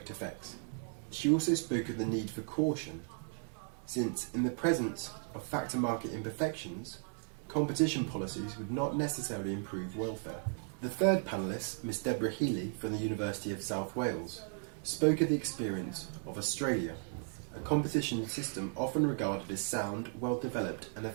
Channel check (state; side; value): silent; left; 54 dB below the other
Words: effects. She also spoke of the need for caution, since in the presence of factor market imperfections, competition policies would not necessarily improve welfare. The third panellist, Ms. Deborah Healy from the University of South Wales, spoke of the experience of Australia, a competition system often regarded as sound, well-developed and